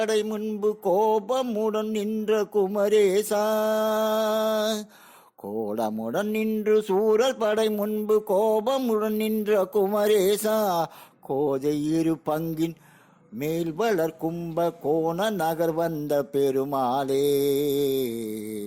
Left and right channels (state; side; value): identical; both; correlation 1.00